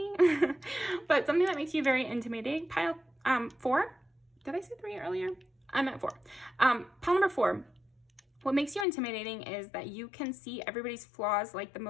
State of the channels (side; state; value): right; drops out; at 8.8 s